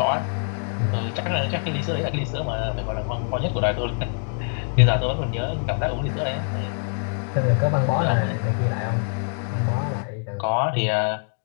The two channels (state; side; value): silent; right; 56 dB below the other